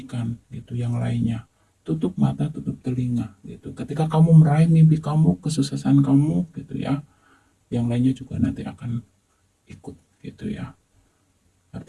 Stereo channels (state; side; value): identical; both; correlation 1.00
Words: gitu yang lainnya. Tutup mata, tutup telinga gitu. Ketika kamu meraih mimpi kamu, kesuksesan kamu gitu ya, yang lainnya juga nanti akan ikut gitu ya.